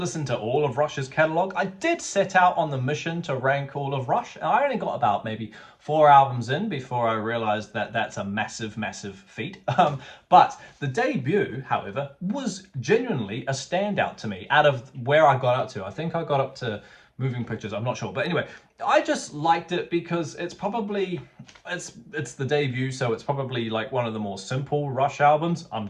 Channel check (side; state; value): both; identical; correlation 1.00